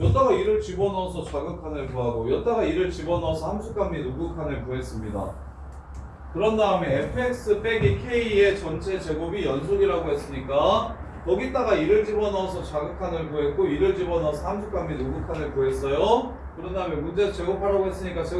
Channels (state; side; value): identical; both; correlation 1.00